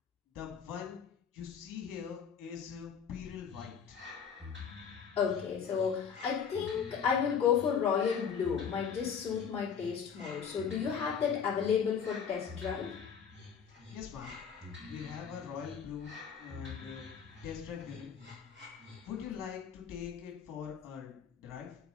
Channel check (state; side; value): quieter; right; 7.1 dB